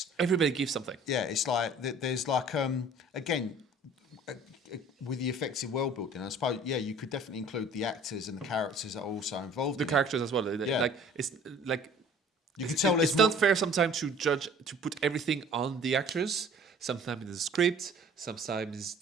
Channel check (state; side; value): normal; both; correlation 0.50